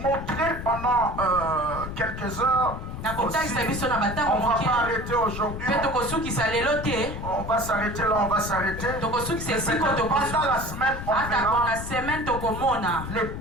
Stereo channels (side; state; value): left; noise; rumble, 7 dB below the sound